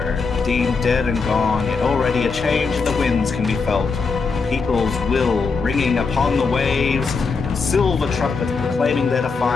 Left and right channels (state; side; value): quieter; right; 4.7 dB